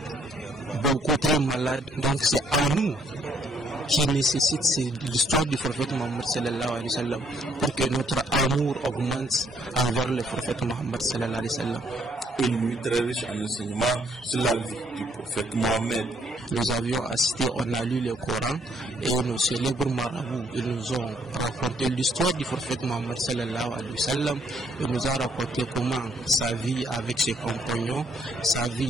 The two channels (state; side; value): normal; both; correlation 0.68